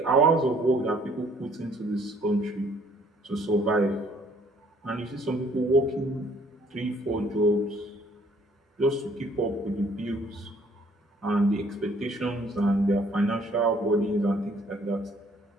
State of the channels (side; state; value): both; normal; correlation 0.61